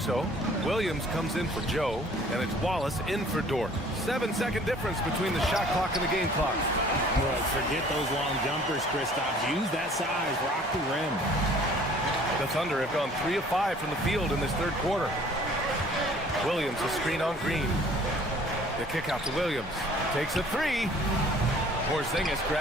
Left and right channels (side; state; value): both; normal; correlation 0.53